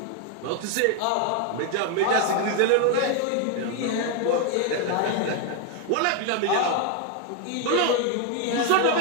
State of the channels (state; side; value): different; both; correlation 0.01